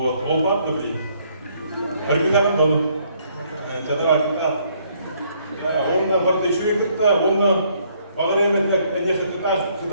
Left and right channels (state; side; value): inverted; both; correlation -0.67